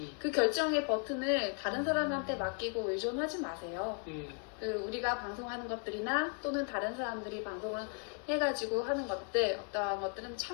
그 결정의 버튼을 다른 사람한테 맡기고 의존하지 마세요. 우리가 방송하는 것들이나 또는 다른 사람들이 방송을 해가지고 하는 것들 어떠한 것들은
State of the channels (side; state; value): right; quieter; 39.7 dB